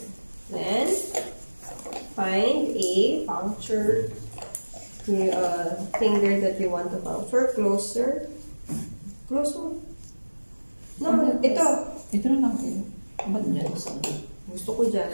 Then, find a puncture finger that you want to puncture. Closer. Closer. No, ito. Ito na lang kayo. Ba't dyan? Gusto ko dyan.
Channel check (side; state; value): both; inverted; correlation -1.00